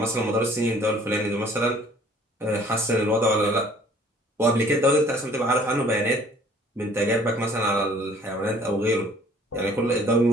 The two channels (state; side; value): normal; both; correlation 0.56